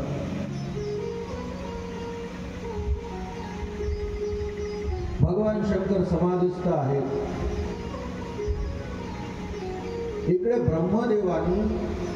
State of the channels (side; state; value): both; identical; correlation 1.00